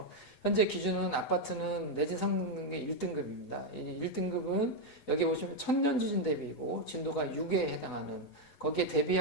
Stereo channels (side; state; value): right; late; 8.0 ms